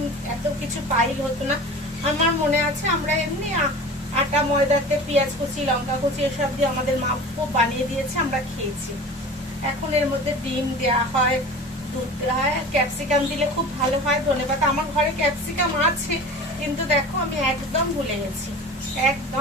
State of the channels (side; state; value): both; normal; correlation 0.37